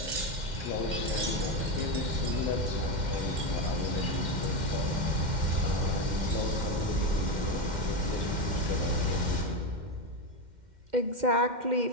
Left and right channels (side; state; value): left; late; 2.1 ms